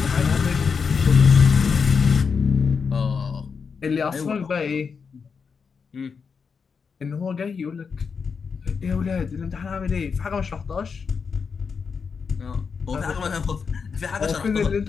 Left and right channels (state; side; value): quieter; right; 5.7 dB